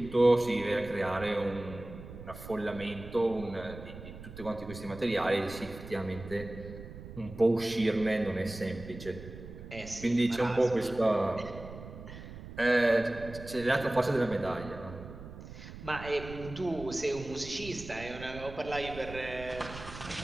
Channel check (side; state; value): right; noise; rumble, 13 dB below the sound